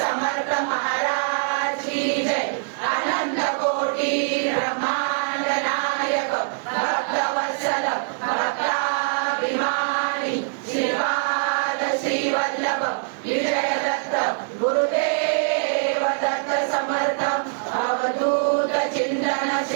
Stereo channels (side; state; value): left; silent; 63 dB below the other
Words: महाराज की जय। आनंद कोटी ब्रह्मांड नायक भक्तवत्सल भक्ताभिमानी श्रीपाद श्री वल्लभ विजय दत्त गुरुदेव दत्त समर्थ अवधूत चिंतन